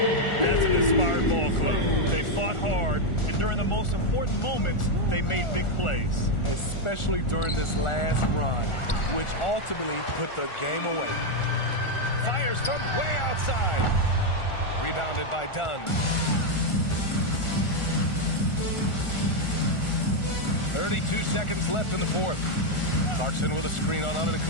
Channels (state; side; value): late; right; 1.4 ms